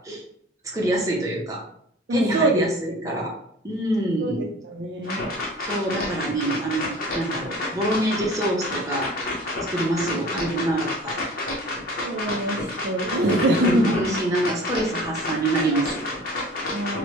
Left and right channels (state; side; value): normal; both; correlation 0.44